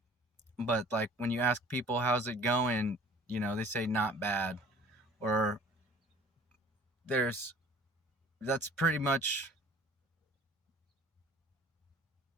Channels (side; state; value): both; normal; correlation 0.50